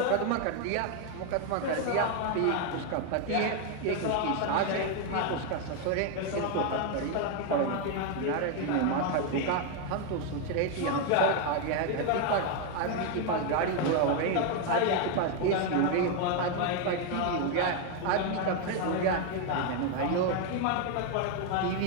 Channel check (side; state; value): both; different; correlation 0.01